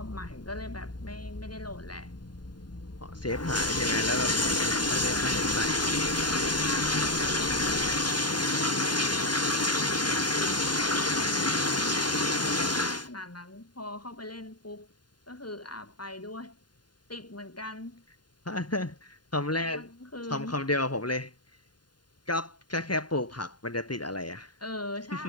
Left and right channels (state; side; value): late; right; 0.71 ms